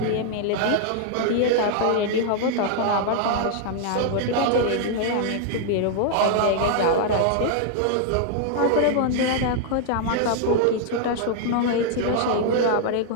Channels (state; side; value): different; both; correlation -0.01